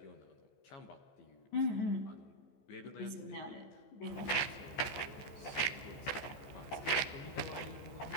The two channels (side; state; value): right; late; 14 ms